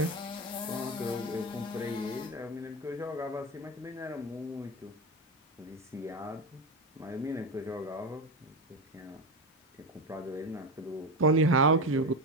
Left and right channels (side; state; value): both; normal; correlation 0.18